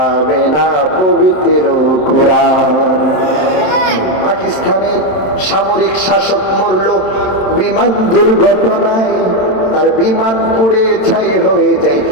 না পবিত্র কোরআন। পাকিস্তানের সামরিক শাসক মরল বিমান দুর্ঘটনায়, তার বিমান পুড়ে ছাই হয়ে যায়,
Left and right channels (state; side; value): late; right; 27 ms